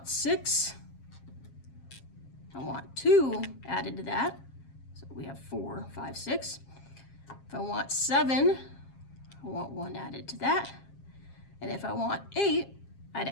6, I want 2 added to that. So we have 4, 5, 6. If I want 7, I want 1 added to that. And if I want 8, I'd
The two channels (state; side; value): late; right; 7.4 ms